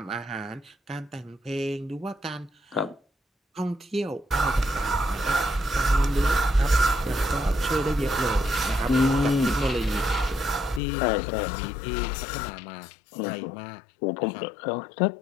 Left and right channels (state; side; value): drops out; right; at 10.8 s